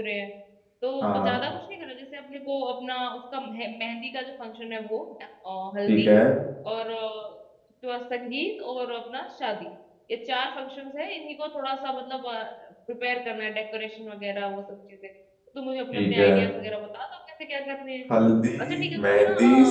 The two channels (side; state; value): both; identical; correlation 1.00